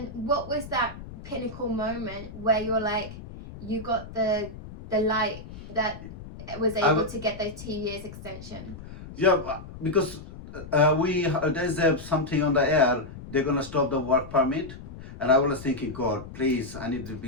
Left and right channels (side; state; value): left; noise; rumble, 14 dB below the sound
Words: what was that pinnacle moment where you were like, you got the light that was able to get those 2 years extension? Yeah, because there's something on the air, they're going to stop the work permit. And I was thinking, God, please, I need the